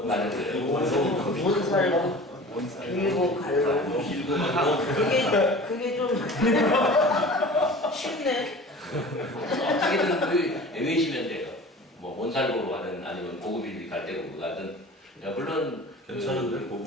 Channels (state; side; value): normal; both; correlation 0.40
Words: 맞았어요. 뭔 살고 빌고 갈로. 빌고 갈로. 그게 좀 쉽네. 어떻게든 외우시면 돼요. 뭐 몬살고로 가든 아니면 고고 빌빌 갈대로 가든. 야, 물론 괜찮은데